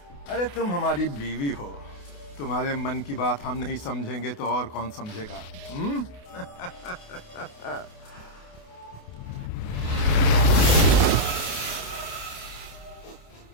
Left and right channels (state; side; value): late; right; 28 ms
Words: अरे तुम हमारी बीवी हो, तुम्हारे मन की बात हम नहीं समझेंगे तो और कौन समझेगा?